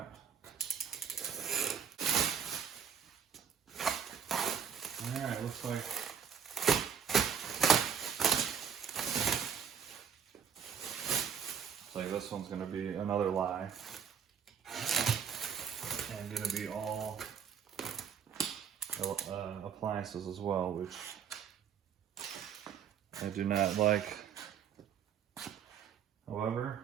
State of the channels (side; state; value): left; quieter; 7.7 dB